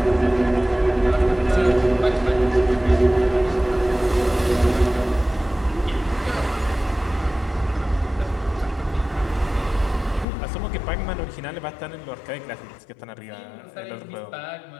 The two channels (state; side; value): drops out; right; at 10.2 s